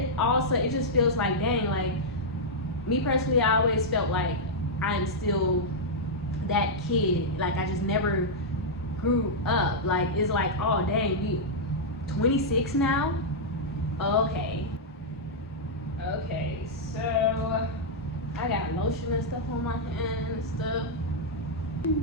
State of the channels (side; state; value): both; normal; correlation -0.07